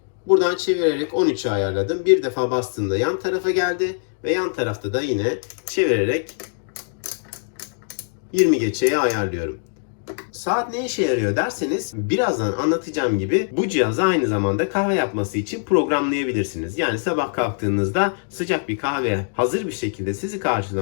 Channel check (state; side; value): silent; right; digital silence